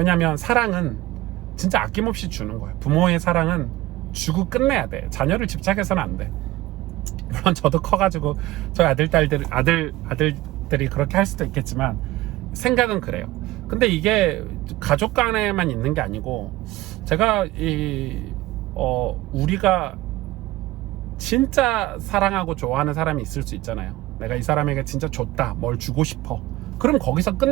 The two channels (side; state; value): left; quieter; 17.4 dB